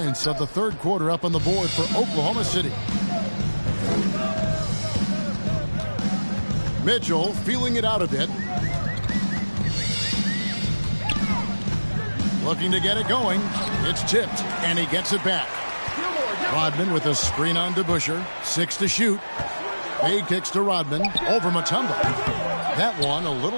of the third quarter up on the board for Oklahoma City. Mitchell feeling it out a bit. Looking to get it going. It's tipped, and he gets it back. Rodman with a screen on DeBusschere. 6 to shoot. Fade kicks to Rodman. Over Mutombo. That one a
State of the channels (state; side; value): inverted; both; correlation -1.00